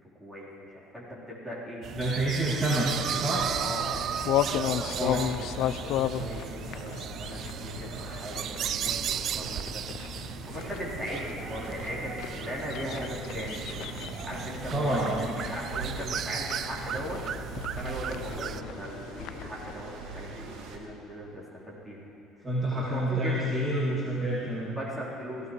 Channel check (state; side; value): normal; both; correlation 0.50